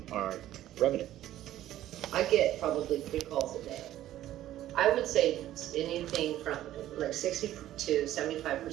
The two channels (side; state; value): left; quieter; 13.3 dB